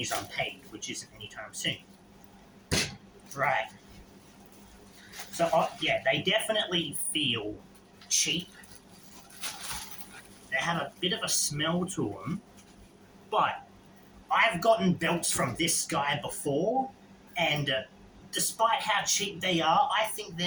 unpaid, which isn't anytime soon. Right. So, yeah, they definitely feel cheap. They have a bit of a smell to them. But I've gotten belts from this guy before, and despite how cheap they are, I think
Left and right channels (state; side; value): identical; both; correlation 1.00